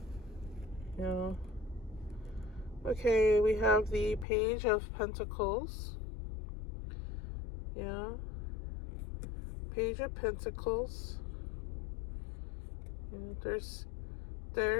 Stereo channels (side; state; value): right; drops out; at 4.2 s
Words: Yeah. Okay, we have the Page of Pentacles. Yeah. Page of Pentacles. Yeah,